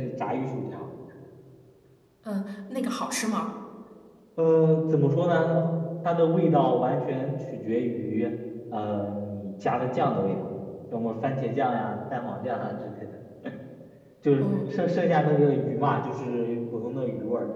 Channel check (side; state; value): both; identical; correlation 1.00